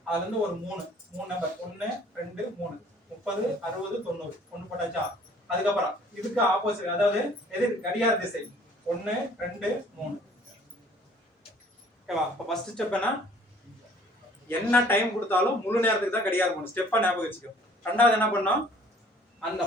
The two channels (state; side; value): normal; both; correlation 0.55